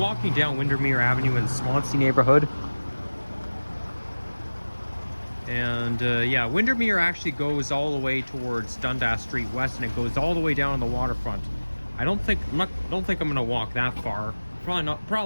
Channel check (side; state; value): both; inverted; correlation -1.00